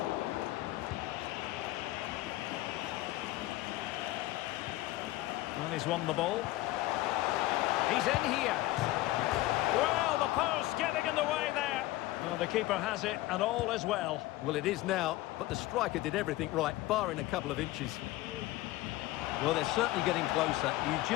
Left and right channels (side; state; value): right; quieter; 17.4 dB